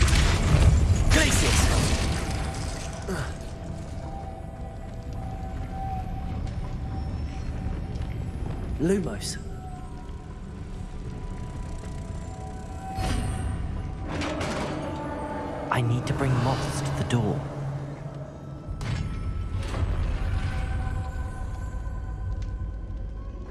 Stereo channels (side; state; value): both; identical; correlation 1.00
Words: Glacius. Lumos. I need to bring moths to the door.